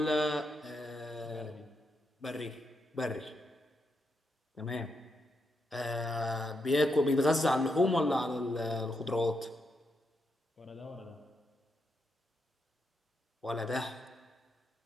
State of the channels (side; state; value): both; normal; correlation 0.82